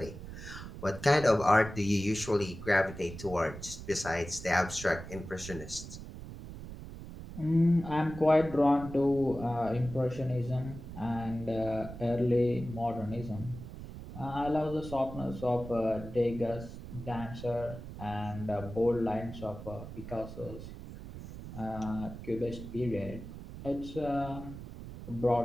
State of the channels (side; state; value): right; noise; rumble, 11 dB below the sound